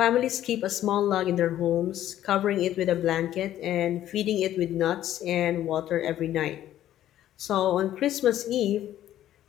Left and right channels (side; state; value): right; quieter; 12.4 dB